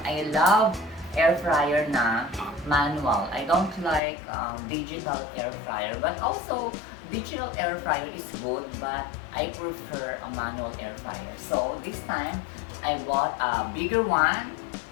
I love air fryer na manual. I don't like digital air fryer, but also digital air fryer is good, but I prefer a manual air fryer. So this time I bought a bigger one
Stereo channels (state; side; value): drops out; right; at 4.0 s